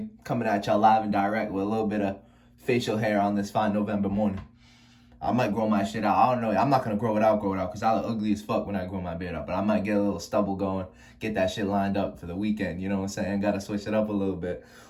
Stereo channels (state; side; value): identical; both; correlation 1.00